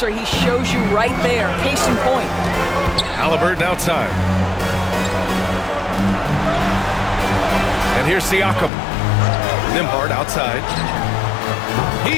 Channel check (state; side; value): drops out; right; at 8.7 s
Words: he shows you right there. Case in point. Halliburton outside. And here's Siakam. Nembhard outside.